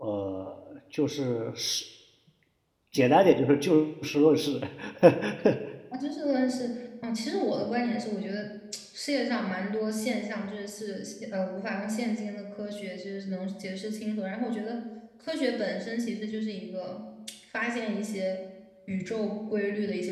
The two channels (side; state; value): both; identical; correlation 1.00